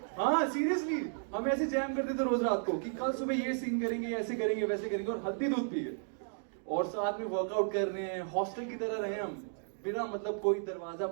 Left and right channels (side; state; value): left; silent; digital silence